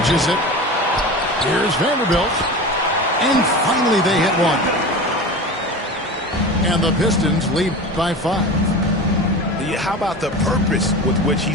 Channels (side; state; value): both; normal; correlation 0.31